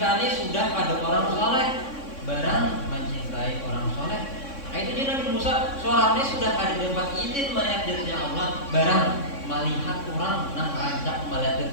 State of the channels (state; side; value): late; right; 3.6 ms